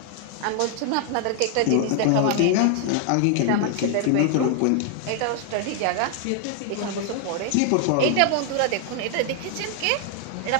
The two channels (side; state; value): both; different; correlation 0.00